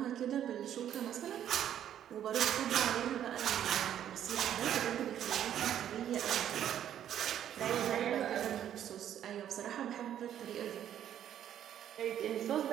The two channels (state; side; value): quieter; left; 10.4 dB